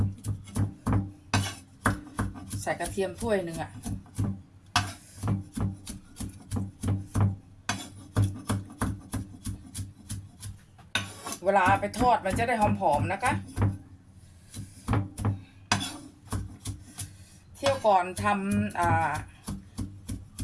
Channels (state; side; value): identical; both; correlation 1.00